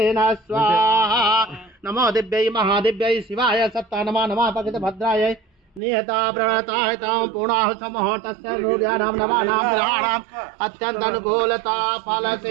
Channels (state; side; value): drops out; left; at 5.8 s